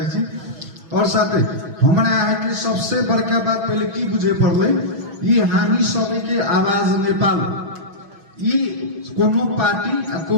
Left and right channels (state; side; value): late; left; 6.1 ms